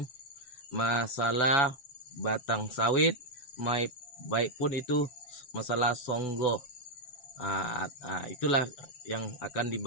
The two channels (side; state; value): right; late; 7.2 ms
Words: masalah batang sawit, baik pun itu masalah songgo. Itulah yang akan